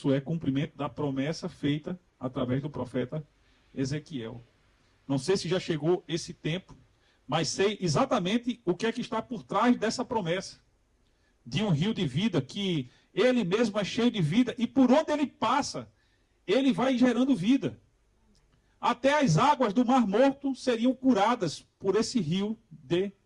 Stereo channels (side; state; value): both; identical; correlation 1.00